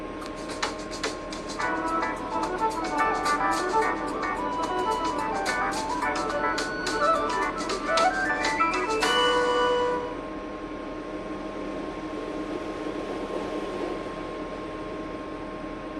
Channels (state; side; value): identical; both; correlation 1.00